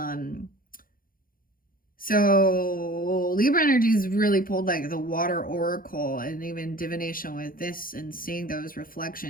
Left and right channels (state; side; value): late; right; 0.41 ms